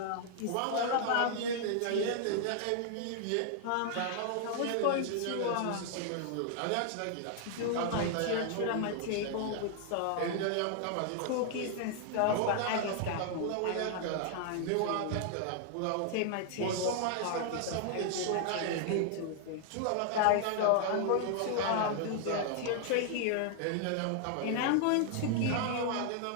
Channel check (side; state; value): both; different; correlation 0.00